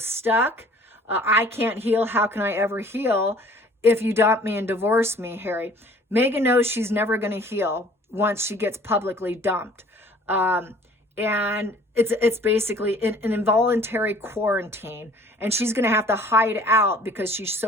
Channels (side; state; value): both; normal; correlation 0.52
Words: I can't heal. How can I ever heal if you dump me and divorce me, Harry? Meghan knows she's never going to heal once she gets publicly dumped. And it's basically an involuntary quarantine. And she's going to have to hide out because she's